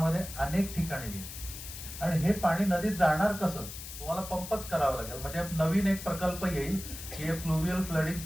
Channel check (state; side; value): noise; left; hiss, 11 dB below the sound